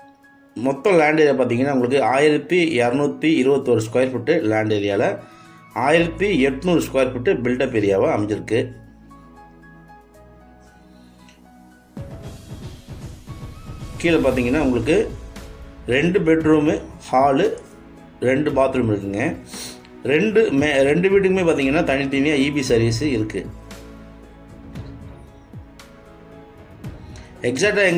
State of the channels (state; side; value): identical; both; correlation 1.00